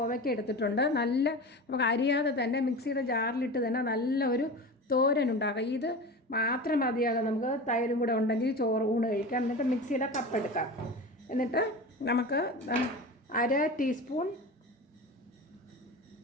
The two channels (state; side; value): normal; both; correlation 0.30